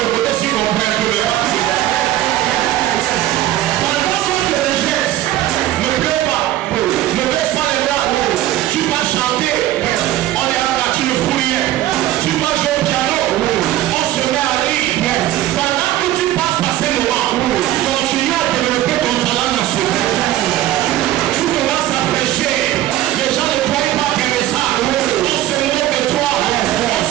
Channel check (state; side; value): quieter; left; 14.1 dB